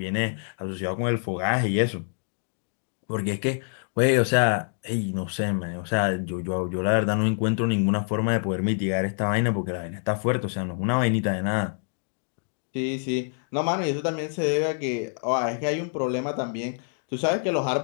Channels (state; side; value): silent; right; digital silence